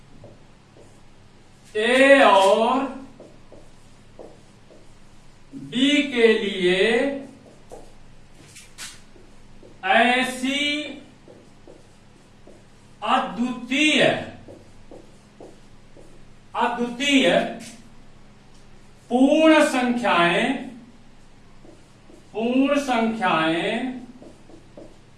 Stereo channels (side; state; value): both; identical; correlation 1.00